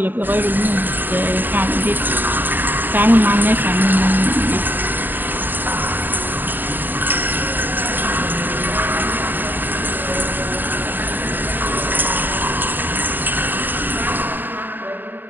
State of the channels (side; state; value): left; late; 0.091 ms